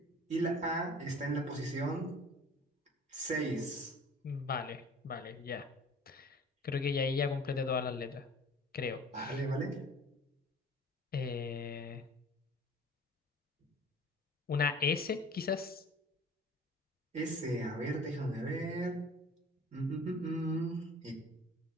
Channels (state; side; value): normal; both; correlation 0.46